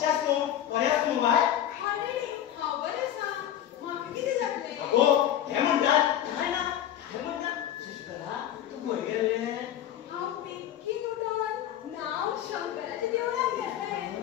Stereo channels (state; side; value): quieter; right; 11.1 dB